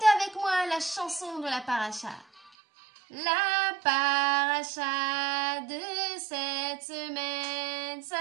avec moi la chanson de la paracha. La paracha de cette semaine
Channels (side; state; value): left; drops out; at 2.5 s